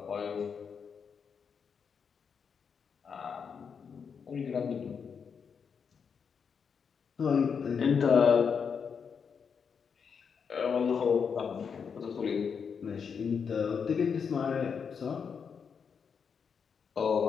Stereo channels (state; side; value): quieter; right; 6.4 dB